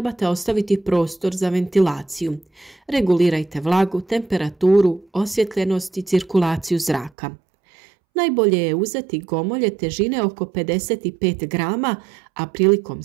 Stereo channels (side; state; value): left; drops out; at 7.1 s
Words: ostaviti prostor za ventilaciju. Regulirajte vlagu, temperaturu, osvjetljenost i cirkulaciju zraka. Najbolje je uzeti gomolje težine oko 55 grama, a prilikom